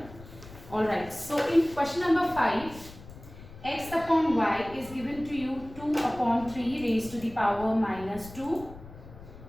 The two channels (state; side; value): noise; left; rumble, 17 dB below the sound